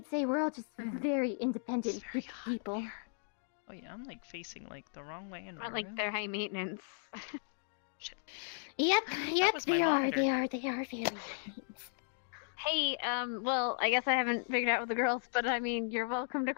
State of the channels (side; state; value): right; silent; digital silence